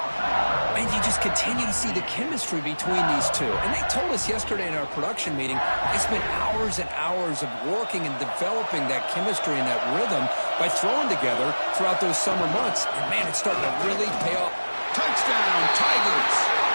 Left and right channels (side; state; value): both; inverted; correlation -1.00